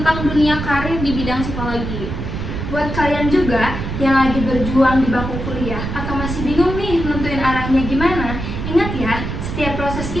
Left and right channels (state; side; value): noise; right; rumble, 5 dB below the sound